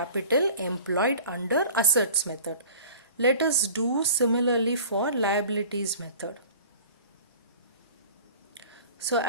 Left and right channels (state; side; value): inverted; both; correlation -0.44